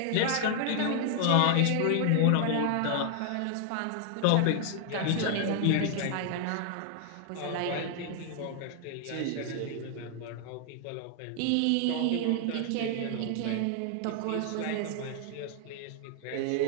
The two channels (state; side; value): different; both; correlation 0.00